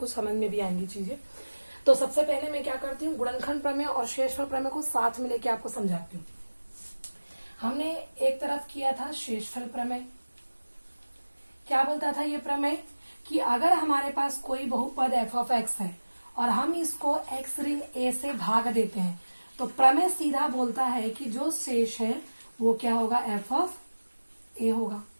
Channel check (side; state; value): both; inverted; correlation -1.00